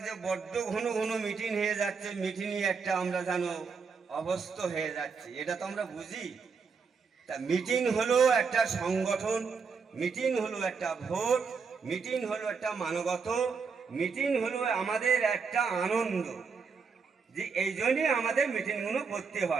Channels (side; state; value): left; quieter; 5.4 dB